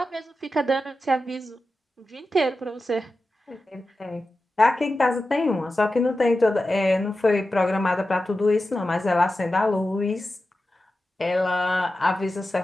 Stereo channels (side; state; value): both; normal; correlation 0.92